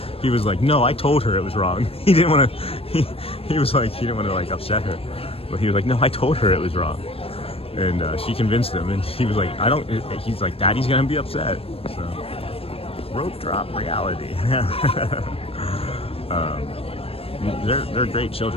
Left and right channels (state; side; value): late; right; 0.28 ms